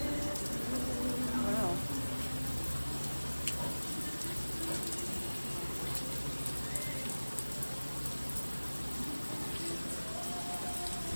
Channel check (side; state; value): both; inverted; correlation -1.00